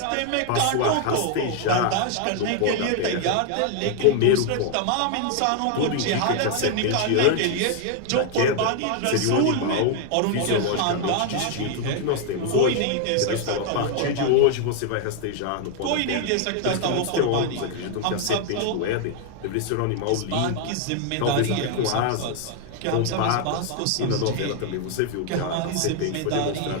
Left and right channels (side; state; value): both; different; correlation 0.00